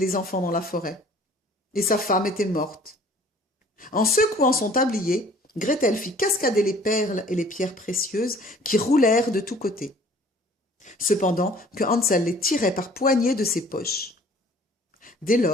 enfants dans la forêt, et sa femme était morte. En secouant son tablier, Gretel fit cascader les perles et les pierres précieuses qui roulèrent de tous côtés, cependant que Hansel les tirait par poignées de ses poches. Dès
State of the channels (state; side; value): normal; both; correlation 0.52